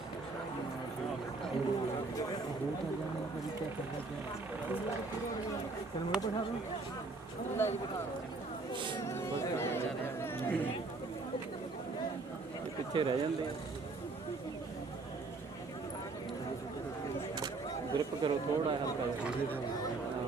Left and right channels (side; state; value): left; quieter; 3.6 dB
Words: पिछे रह जाते ग्रिप करो थोड़ा हल्का